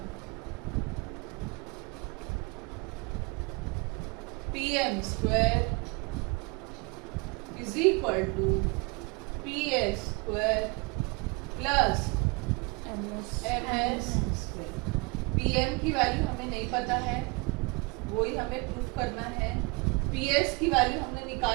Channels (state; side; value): quieter; left; 29.3 dB